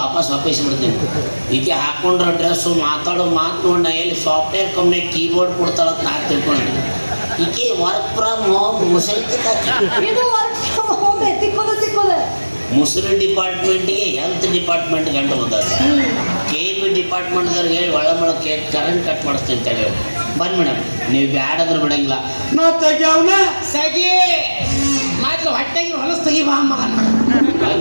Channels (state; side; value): inverted; both; correlation -1.00